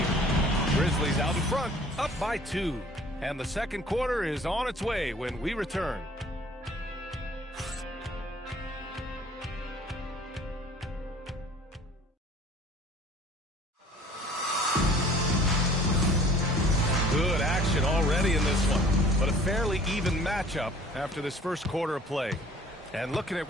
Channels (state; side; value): normal; both; correlation 0.52